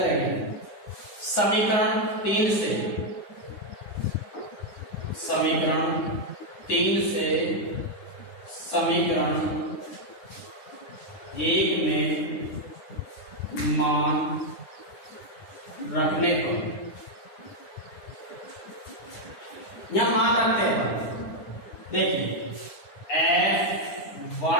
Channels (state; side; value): late; right; 9.7 ms